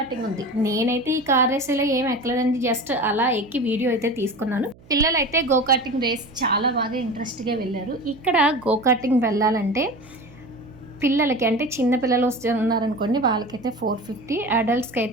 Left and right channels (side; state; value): right; noise; hum, 25 dB below the sound